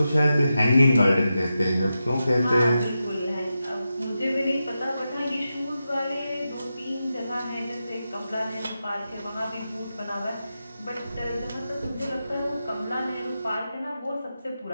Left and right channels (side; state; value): both; inverted; correlation -0.90